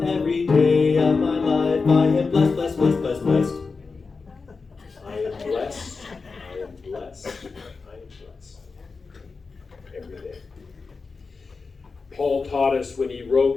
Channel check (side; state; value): right; quieter; 4.5 dB